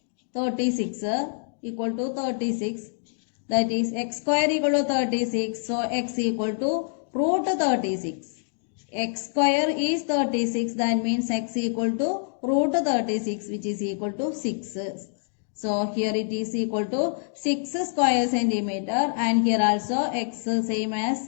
36 equal to 36. That is x square equal to 36. So x equal to root 36. X square is 36. That means x equal to root 36 which is equal to 6. So here it is equal to 6 square centimeter and here also x same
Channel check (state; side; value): silent; right; digital silence